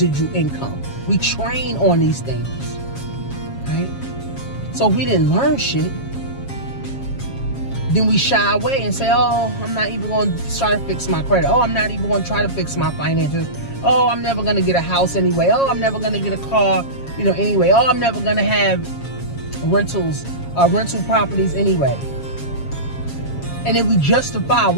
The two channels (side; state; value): right; late; 7.3 ms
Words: income. We train on these things, right? So if we didn't learn shit, then we shy away and say, oh, I'm not even going to try to fix my credit. Oh, I'm not even going to try to fix my finances. Oh, I'm never going to get a house anyway. Oh, I'm never going to get a car, anyway. Oh, I'm never going to have rental properties anyway. And then we justify